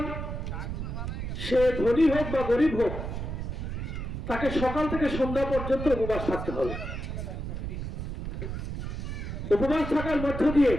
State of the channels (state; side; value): noise; right; rumble, 5 dB below the sound